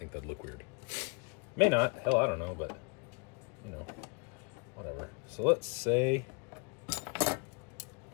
that'd look weird. May not, hell, I don't know, but you know, whatever. So let's say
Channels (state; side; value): quieter; right; 33.3 dB